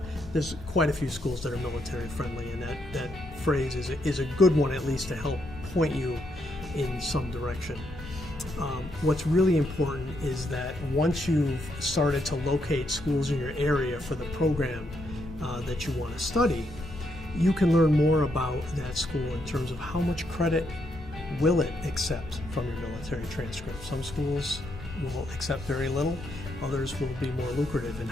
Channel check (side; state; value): both; normal; correlation 0.78